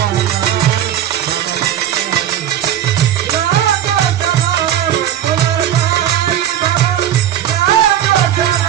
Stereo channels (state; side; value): quieter; left; 11.0 dB